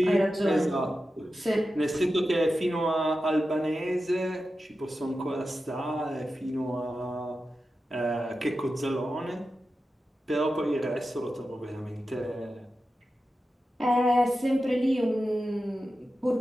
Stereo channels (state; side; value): normal; both; correlation 0.92